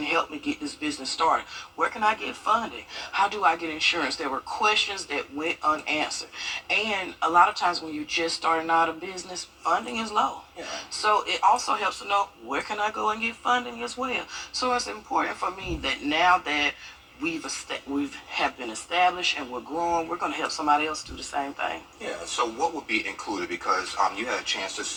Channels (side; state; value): both; identical; correlation 1.00